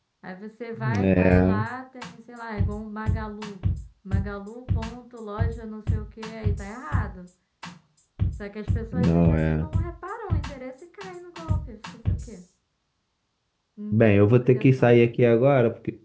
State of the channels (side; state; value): both; identical; correlation 1.00